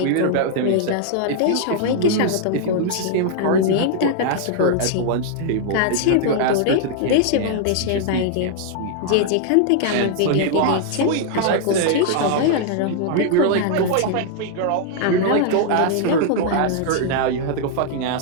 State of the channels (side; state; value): both; different; correlation -0.01